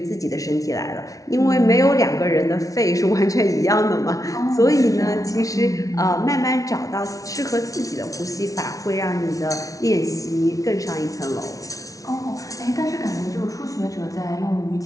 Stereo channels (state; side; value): late; right; 0.17 ms